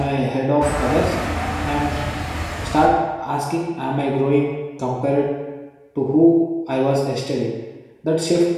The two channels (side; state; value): both; identical; correlation 1.00